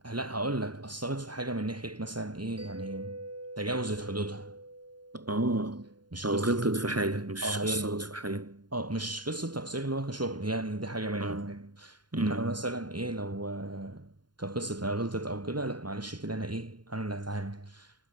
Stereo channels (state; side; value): late; left; 0.71 ms